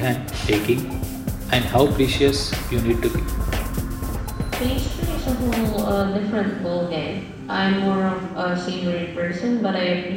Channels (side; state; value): both; identical; correlation 1.00